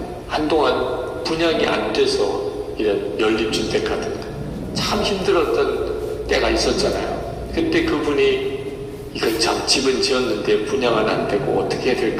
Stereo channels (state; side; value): identical; both; correlation 1.00